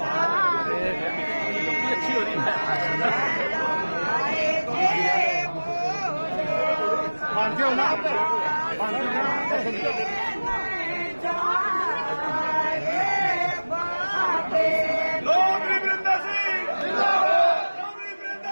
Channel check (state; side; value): inverted; both; correlation -1.00